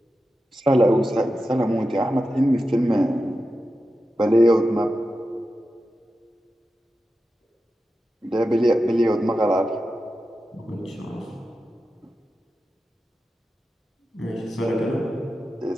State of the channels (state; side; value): normal; both; correlation 0.91